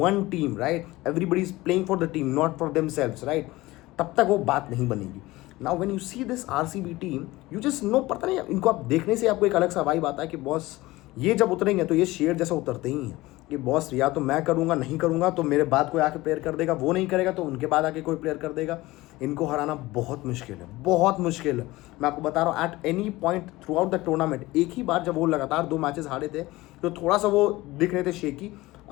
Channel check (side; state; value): right; quieter; 19.3 dB